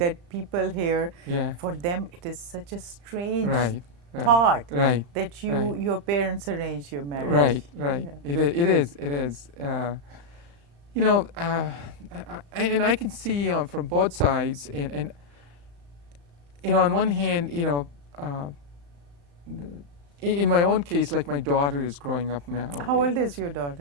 people hear. Yeah. For them, it is such a strange Right. thought Right. that Right. your parents arranged your marriage. Right. Right. Yeah. It is. And I can see from both sides, and on one hand, in my own case, like my daughter is growing up now. How old is your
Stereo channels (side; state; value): left; late; 35 ms